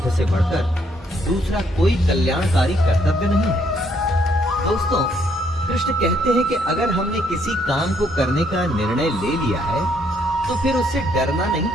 से बढ़कर दूसरा कोई कल्याणकारी कर्तव्य नहीं है। दोस्तों, कृष्ण कहते हैं कि अगर हमने किसी काम को करने का निर्णय ले लिया है तो फिर उससे डरना नहीं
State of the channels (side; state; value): both; normal; correlation 0.70